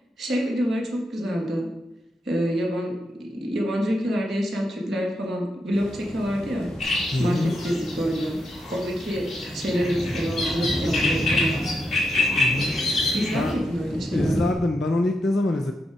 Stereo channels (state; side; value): normal; both; correlation 0.84